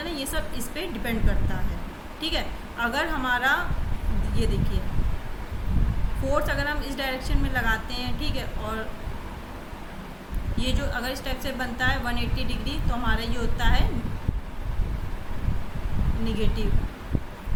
ये सब इस पर डिपेंड करता है। ठीक है, अगर हमारा ये देखिए फोर्स अगर हम इस डायरेक्शन में लगाते हैं, ठीक है, और ये जो अगर इस टाइप से बनता है 180 डिग्री, तो हमारा ये होता है निगेटिव,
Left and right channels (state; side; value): identical; both; correlation 1.00